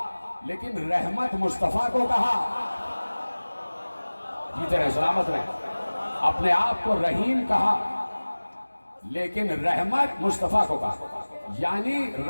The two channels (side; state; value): both; inverted; correlation -1.00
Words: لیکن رحمت مصطفیٰ کو کہا۔ جیتے رہے، سلامت رہے۔ اپنے آپ کو رحیم کہا لیکن رحمت مصطفیٰ کو کہا، یعنی